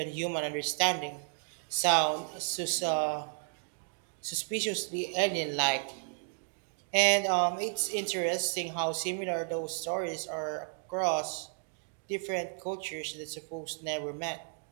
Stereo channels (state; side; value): silent; left; 56 dB below the other